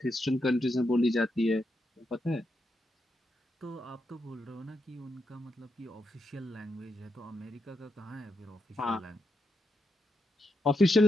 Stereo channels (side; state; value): both; normal; correlation 0.83